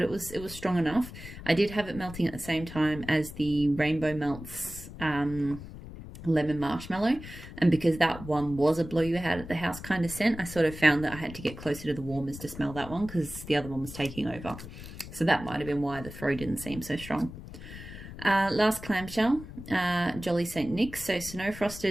it was strong enough. I did have it melting at the same time as the Rainbow Melts lemon marshmallow, and because that one was a blow you out of the house kind of scent, I sort of found that I had to get closer to the warmers to smell that one because the other one was taking over. So that might have been why the throw didn't seem so strong. Last clamshell, Jolly St. Nick's, so snow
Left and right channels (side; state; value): left; noise; rumble, 13 dB below the sound